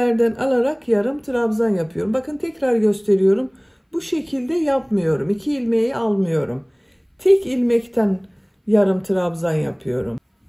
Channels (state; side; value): identical; both; correlation 1.00